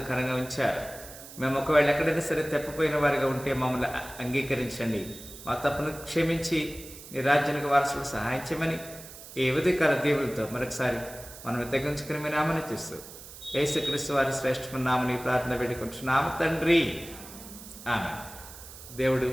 ఉంచారు. మేము ఒకవేళ ఎక్కడైనా సరే తప్పిపోయిన వారిగా ఉంటే మమ్మల్ని అంగీకరించండి, మా తప్పును క్షమించి నీ రాజ్యానికి వారసులకు సహాయం చేయమని ఈ ఉదయకాల దేవులతో మరొకసారి మనం తగ్గించుకుని మీ నామని చూస్తూ యేసుక్రీస్తు వారి శ్రేష్టమైన నామని ప్రార్థన పెట్టుకుంటున్నాము తండ్రి, ఆమె. దేవుడు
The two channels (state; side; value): noise; right; hiss, 16 dB below the sound